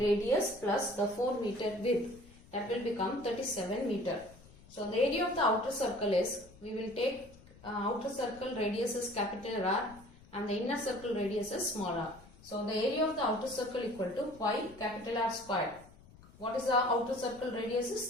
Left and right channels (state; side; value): noise; left; rumble, 23 dB below the sound